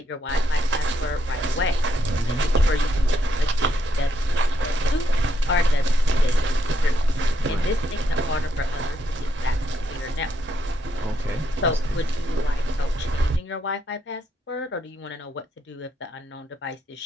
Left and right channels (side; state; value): both; normal; correlation 0.77